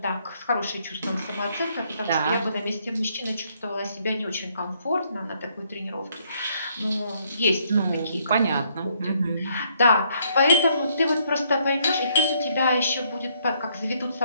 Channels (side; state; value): both; inverted; correlation -0.69